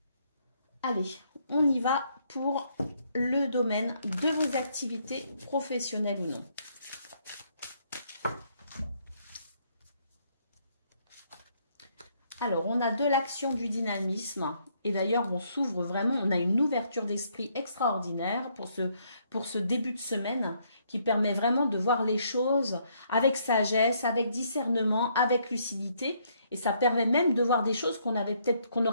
Allez, on y va pour le domaine de vos activités professionnelles ou non. Alors, on a de l'action, du dynamisme. Et d'ailleurs, on s'ouvre vraiment, on a une ouverture d'esprit extraordinaire pour ce début de semaine qui permet vraiment de voir les choses avec sagesse, avec discernement, avec lucidité. Et ça permet même de voir des choses qu'on n'aurait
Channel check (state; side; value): inverted; both; correlation -0.70